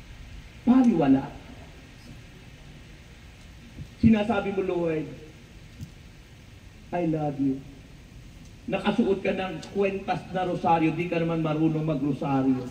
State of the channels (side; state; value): both; identical; correlation 1.00